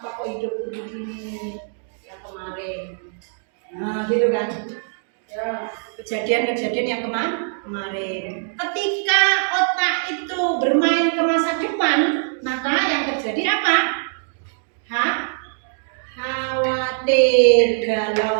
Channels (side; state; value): left; silent; 59 dB below the other